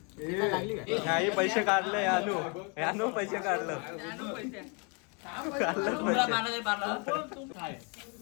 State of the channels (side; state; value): right; quieter; 34.7 dB